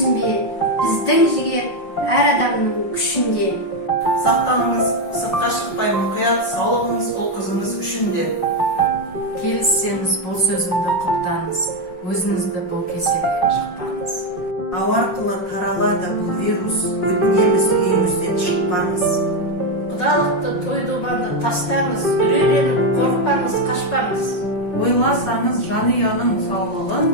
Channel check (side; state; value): right; late; 5.6 ms